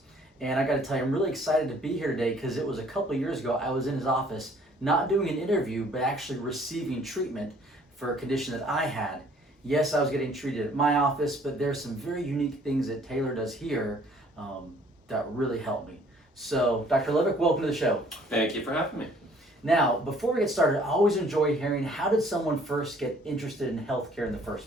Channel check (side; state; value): both; normal; correlation 0.58